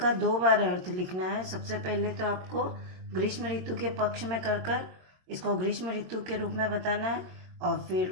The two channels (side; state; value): left; late; 22 ms